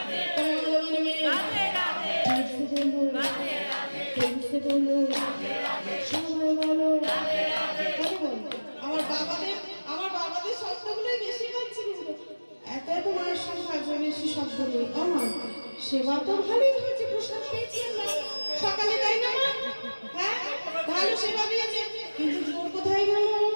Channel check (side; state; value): both; inverted; correlation -1.00